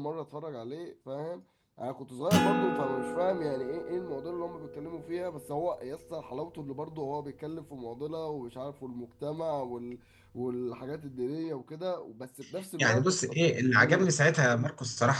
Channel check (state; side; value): identical; both; correlation 1.00